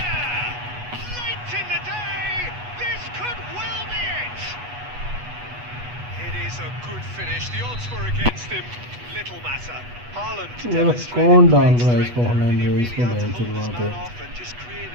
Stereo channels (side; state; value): left; late; 8.2 ms